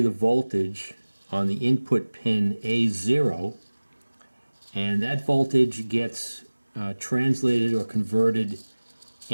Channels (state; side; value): inverted; both; correlation -1.00